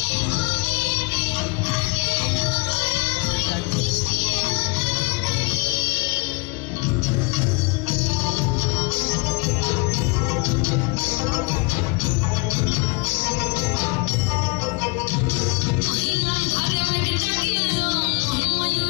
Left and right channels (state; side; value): quieter; right; 29.0 dB